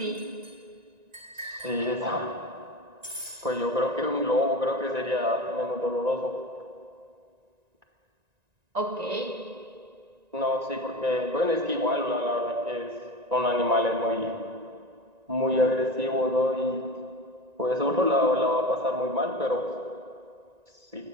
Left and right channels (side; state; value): left; late; 1.9 ms